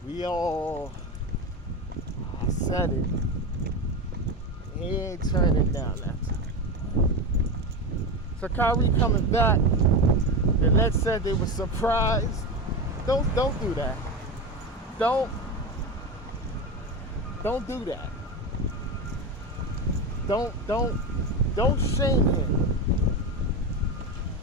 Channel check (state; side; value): normal; both; correlation 0.20